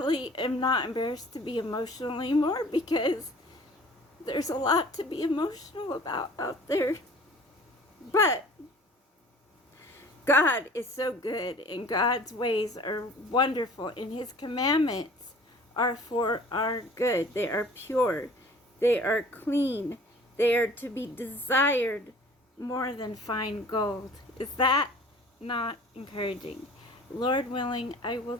am not embarrassed to be emotional anymore, because there's a lot to be emotional about out there. But God is so good, and God's ways are wonderful, and his commandments are for our good. They are pure. They are clean. They are to be desired more than fine gold. Is that not encouraging? Lord willing, I will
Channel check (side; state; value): both; normal; correlation 0.48